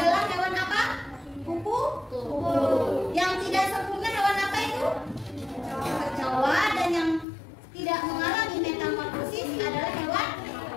hewan apa? Kupu. Yang tidak sempurna hewan apa itu? Kecoa. Dan yang tidak mengalami metamorfosis adalah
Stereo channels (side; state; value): right; drops out; at 7.2 s